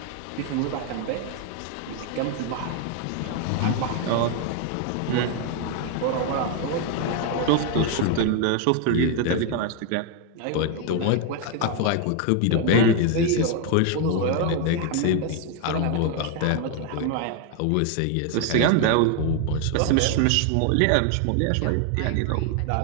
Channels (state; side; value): different; both; correlation 0.01